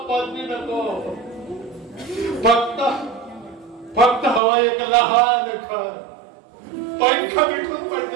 पदवी नको. फक्त हवा एक लहान घर, पंख बिठून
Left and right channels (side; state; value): left; drops out; at 4.4 s